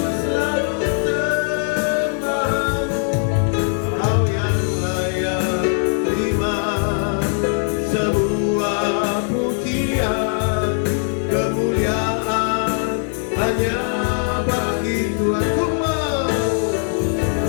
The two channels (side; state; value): right; silent; 59 dB below the other